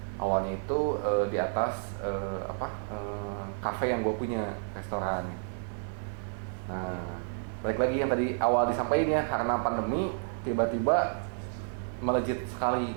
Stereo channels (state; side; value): silent; left; 57 dB below the other